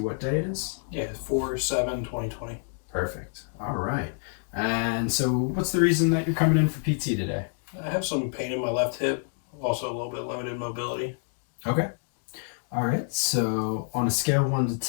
what day it is? Yeah, 4/7/2020. Perfect. All right. And so what's the reason that you're coming in for PT today? I have some pain in my left hip, also a little bit limited mobility. Okay. All right. So on a scale of 1 to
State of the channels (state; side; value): silent; right; 60 dB below the other